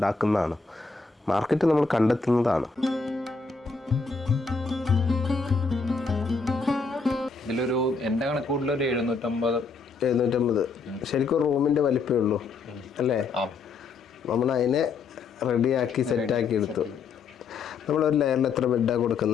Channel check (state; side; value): quieter; right; 4.6 dB